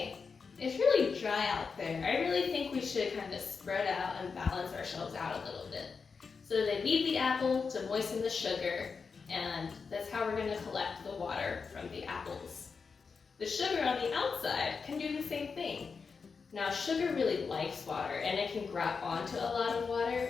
it's really dry out there. I really think we should kind of spread out and balance ourselves out a little bit. So they leave the apple to moisten the sugar, and that's how we're going to collect the water from the apples. The sugar on the outside can do the same thing. Now, sugar really likes water, and it can grab onto a lot of water,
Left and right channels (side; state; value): right; quieter; 5.2 dB